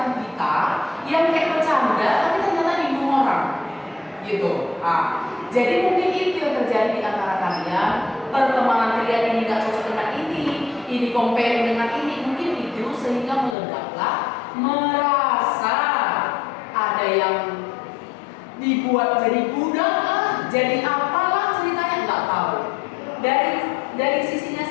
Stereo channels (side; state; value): right; drops out; at 13.6 s